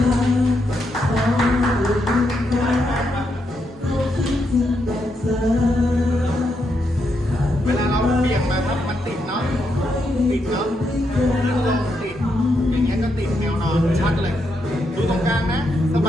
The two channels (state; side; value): normal; both; correlation 0.81